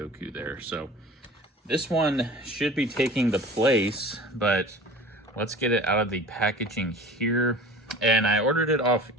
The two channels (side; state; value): both; normal; correlation 0.41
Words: there. So this one should be taking the place, but let's get it out of the packaging here. And I ordered it off